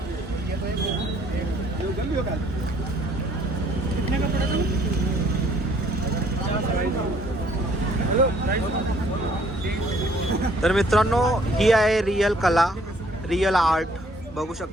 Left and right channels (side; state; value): both; normal; correlation 0.62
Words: तर मित्रांनो ही आहे रिअल कला, रिअल आर्ट, बघू